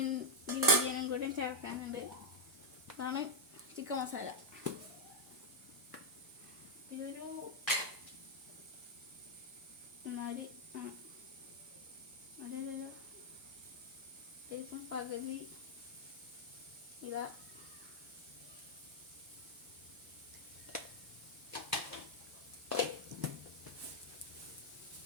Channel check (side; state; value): both; normal; correlation -0.04